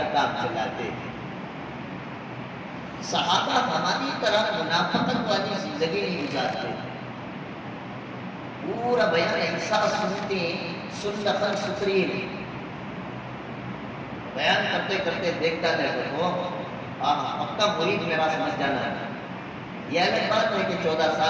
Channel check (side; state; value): both; identical; correlation 1.00